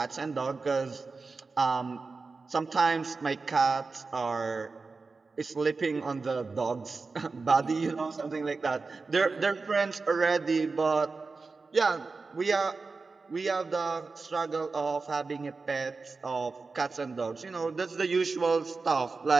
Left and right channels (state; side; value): quieter; left; 4.2 dB